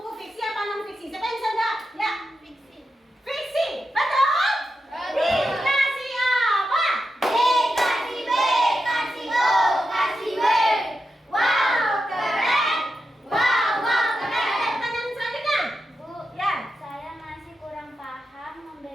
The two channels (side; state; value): both; normal; correlation 0.88